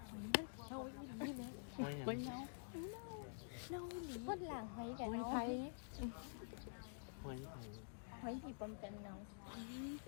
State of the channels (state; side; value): silent; right; digital silence